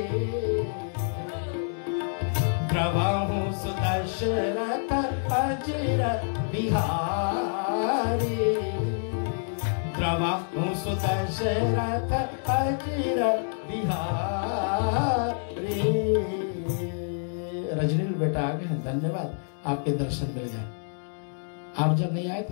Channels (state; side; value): silent; right; digital silence